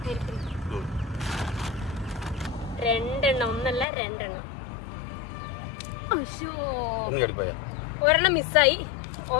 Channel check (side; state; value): right; drops out; at 3.9 s